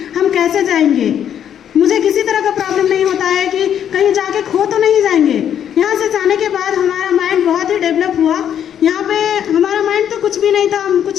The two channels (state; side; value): quieter; right; 9.4 dB